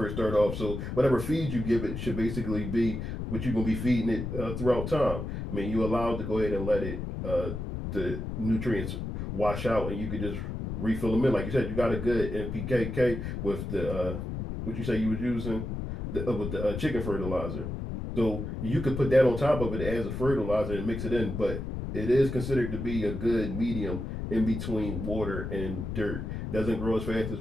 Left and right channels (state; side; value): noise; left; rumble, 5 dB below the sound